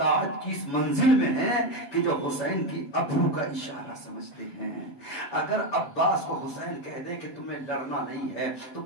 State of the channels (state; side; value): late; right; 7.0 ms